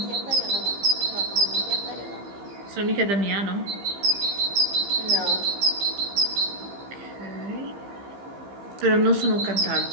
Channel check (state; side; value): late; left; 15 ms